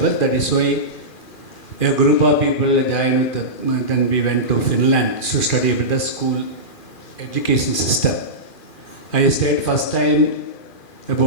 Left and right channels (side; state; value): right; late; 2.4 ms